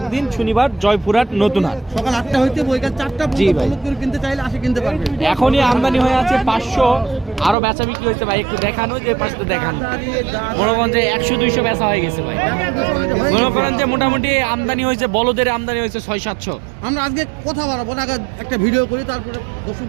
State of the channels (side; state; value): left; drops out; at 7.6 s